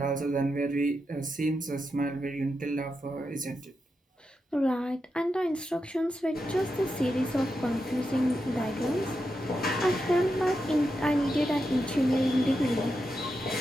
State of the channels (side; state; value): both; normal; correlation 0.87